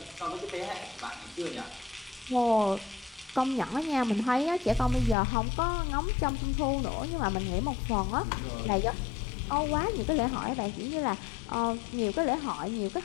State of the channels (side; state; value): right; drops out; at 5.2 s